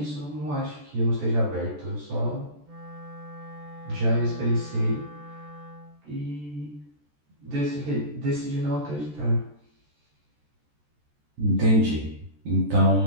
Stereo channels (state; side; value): late; left; 14 ms